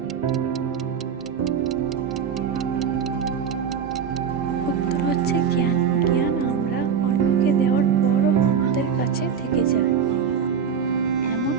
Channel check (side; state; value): left; quieter; 7.0 dB